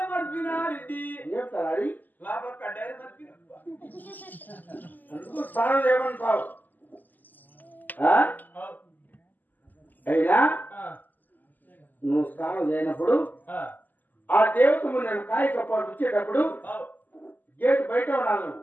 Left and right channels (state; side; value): late; right; 0.085 ms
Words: మర్చిపోయినా రెడ్డి ఏం తలారి లోపల కడ్డాయి మర్చిపోయినా అందుకు స్నానం చేయమంటావు అయినా నువ్వు స్నానం చేయనప్పుడు ఆ దేవతము నేను కాయ కప్పాడు వచ్చేటప్పుడు గేట్ బయట ఉన్నాను.